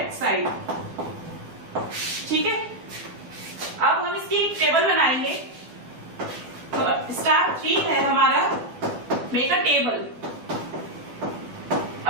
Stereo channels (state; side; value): late; left; 12 ms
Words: side. ठीक है, अब हम इसकी एक टेबल बनाएंगे। तो स्टेप 3 है हमारा, मेक अ टेबल।